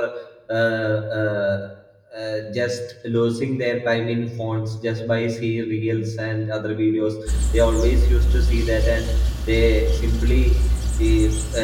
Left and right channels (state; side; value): identical; both; correlation 1.00